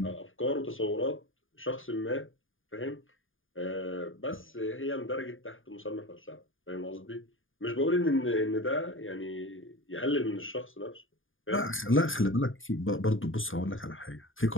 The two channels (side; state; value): right; late; 0.58 ms